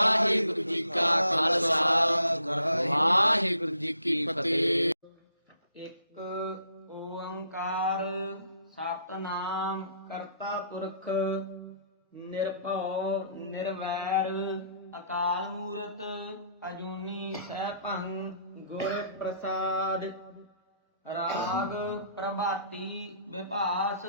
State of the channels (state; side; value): inverted; both; correlation -0.65